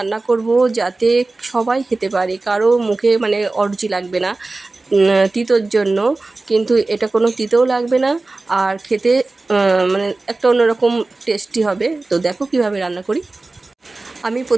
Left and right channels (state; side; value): quieter; left; 3.3 dB